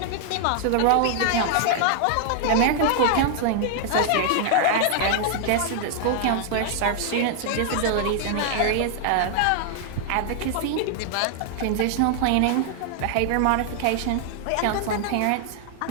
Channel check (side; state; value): both; different; correlation 0.00